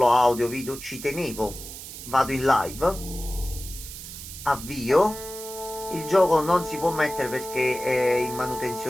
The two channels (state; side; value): noise; right; hiss, 12 dB below the sound